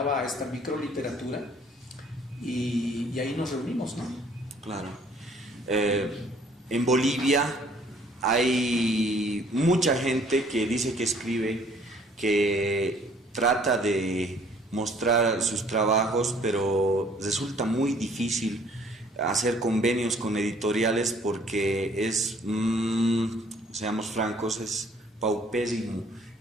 a esta microliteratura y ahí nos reunimos, ¿no? Claro. En Bolivia hay mucha gente que dice que escribe, que trata de mostrar sus trabajos, pero resulta muy difícil hacer convenios con editoriales porque seamos francos, es paupérrimo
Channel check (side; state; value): both; normal; correlation 0.58